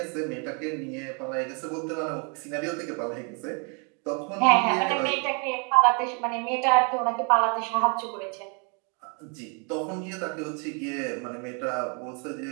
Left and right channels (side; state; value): left; quieter; 36.3 dB